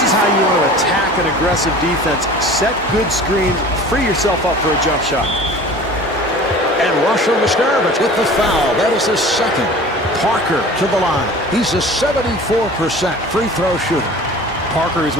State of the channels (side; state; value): both; normal; correlation 0.42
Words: is how you want to attack an aggressive defense. Set good screens. Free yourself up for a jump shot. And Russell Mustarovich with the foul. That is his second. Parker to the line. He's a 74% free throw shooter. Parker is